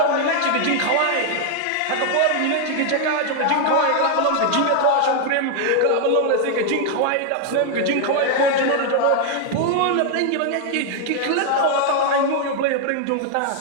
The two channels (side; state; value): both; different; correlation 0.00